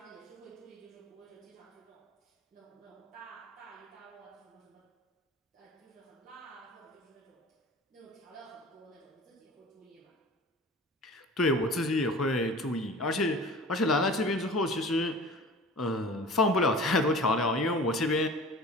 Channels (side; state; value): both; normal; correlation 0.40